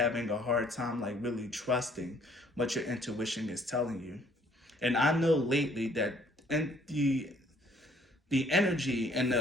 a hard time like really trusting what your intuition is telling you. And I know lately that in the energy in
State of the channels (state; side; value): normal; both; correlation 0.61